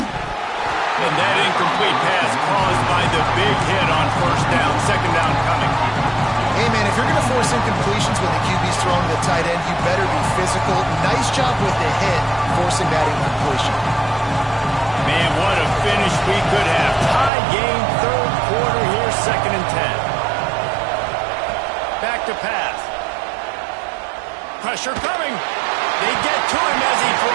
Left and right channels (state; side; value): drops out; left; at 17.3 s